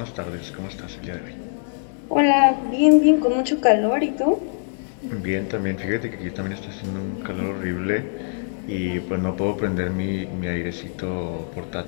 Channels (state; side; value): silent; right; 63 dB below the other